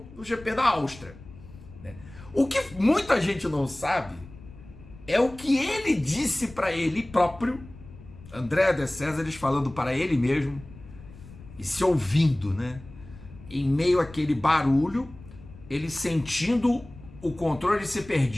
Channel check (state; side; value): noise; left; rumble, 19 dB below the sound